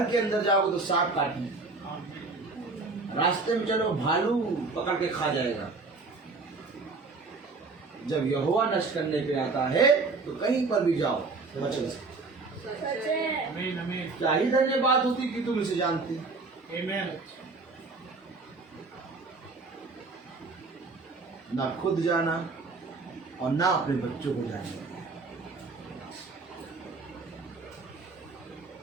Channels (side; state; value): left; quieter; 3.9 dB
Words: के अंदर जाओगे तो सांप काटने, रास्ते में चलो भालू पकड़ के खा जाएगा। जब यहोवा नष्ट करने पे आता है तो कहीं पर भी जाओ बच नहीं सकते। क्या ही धन्यवाद होती कि तुम इसे जानती। ना खुद जाना और ना अपने बच्चों को जाना।